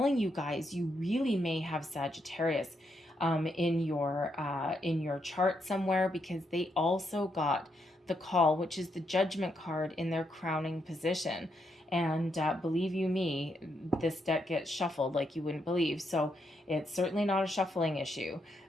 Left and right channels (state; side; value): normal; both; correlation 0.79